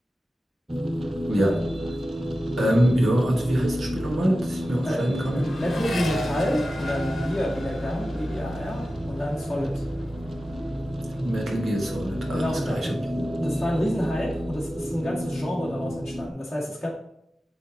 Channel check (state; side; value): normal; both; correlation 0.94